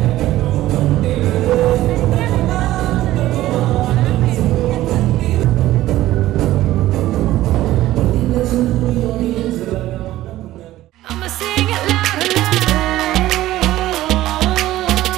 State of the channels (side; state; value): left; quieter; 15.2 dB